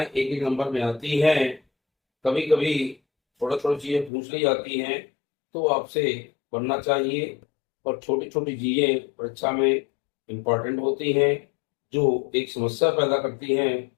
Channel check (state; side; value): drops out; right; at 4.1 s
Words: एक एक नंबर में आती हैं। कभी कभी थोड़ा थोड़ी चीजें पूछ ली जाती हैं, तो आपसे पढ़ना चाहिए। और छोटी छोटी चीजें परीक्षा में इम्पोर्टेंट होती हैं, जो एक समस्या पैदा करती हैं।